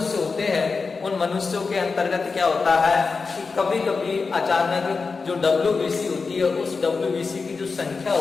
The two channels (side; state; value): right; quieter; 4.6 dB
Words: होते हैं, उन मनुष्यों के अंतर्गत क्या होता है कि कभी कभी अचानक जो WBC होती है, उस WBC की जो संख्या